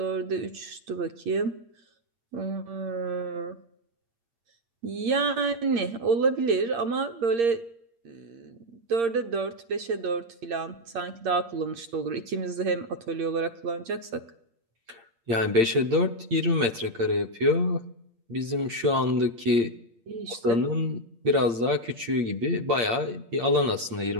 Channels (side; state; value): left; late; 8.7 ms